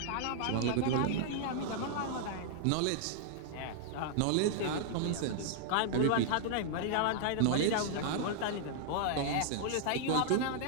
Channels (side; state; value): both; different; correlation -0.01